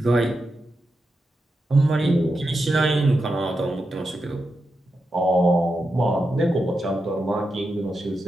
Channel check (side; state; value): both; normal; correlation 0.88